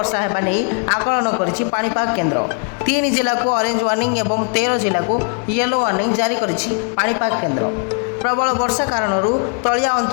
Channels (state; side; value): quieter; right; 38.4 dB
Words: हेबा नै आकलन करिछि पाणीपाग केन्द्र। 3 जिला को ऑरेंज वार्निंग एवं 13 जिला को येलो वार्निंग जारी करिछि पाणीपाग केन्द्र। प्रबल वर्षा कारण तलिया